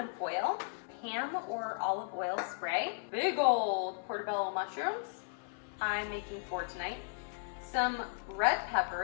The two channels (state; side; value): silent; right; 54 dB below the other